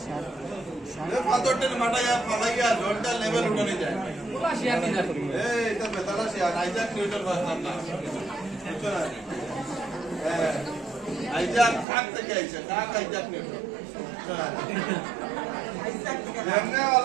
পাথরটার মাথায় ফালাইয়া জলটা লেভেল উঠানো যায় এটা বেতালা শিয়ার আইজাক নিউটন ভাবতাম না বুঝছো না আইজাক কাক থেকে আইছে কাক আইজাক নিউটন এমনি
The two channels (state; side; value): drops out; left; at 11.9 s